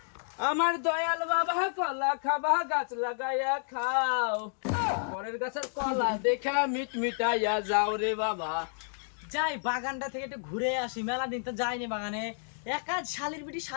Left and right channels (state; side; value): silent; right; digital silence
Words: আমার দয়াল বাবা কলা খাবা গাছ লাগাইয়া খাও, পরের গাছের কলা দেখা মিট মিটাইয়া যাও রে বাবা। যাই বাগানটা থেকে একটু ঘুরে আসি, মেলা দিন তো যাইনি বাগানে। একা শালির বিটি